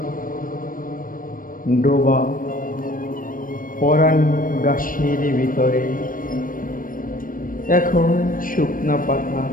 ডোবা পরাণ গাছের ভিতরে। এখন শুকনা পাতা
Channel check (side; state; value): right; late; 0.40 ms